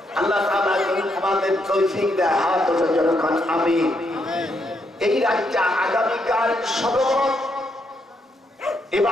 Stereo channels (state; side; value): normal; both; correlation 0.77